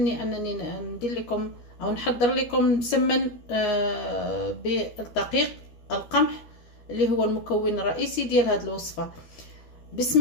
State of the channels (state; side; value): late; right; 12 ms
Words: أنني ندير لكم أو نحضر لكم مسمن بالدقيق القمح اللي هو المكون الرئيسي ديال هذه الوصفة.